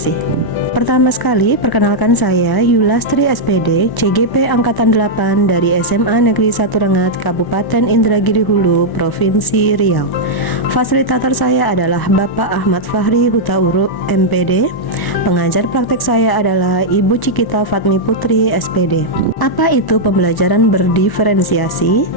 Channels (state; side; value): late; right; 1.1 ms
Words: Pertama sekali, perkenalkan saya Yulastri SPD, CGP Angkatan 8 dari SMA Negeri 1 Rengat, Kabupaten Indragiri Hulu, Provinsi Riau. Fasilitator saya adalah Bapak Ahmad Fahri Hutauruk, MPD. Pengajar praktek saya adalah Ibu Cikita Fatmi Putri, SPD. Apa itu pembelajaran berdiferensiasi?